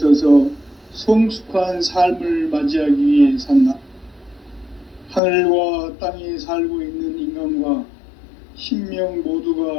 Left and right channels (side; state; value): right; drops out; at 5.2 s